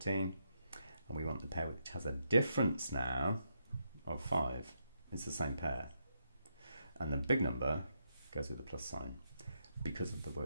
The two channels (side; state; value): both; inverted; correlation -0.80